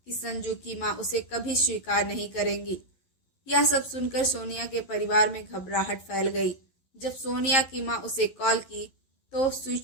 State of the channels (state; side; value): late; right; 11 ms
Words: संजू की माँ उसे कभी स्वीकार नहीं करेंगी। यह सब सुनकर सोनिया के परिवार में घबराहट फैल गई। जब सोनिया की माँ उसे कॉल की तो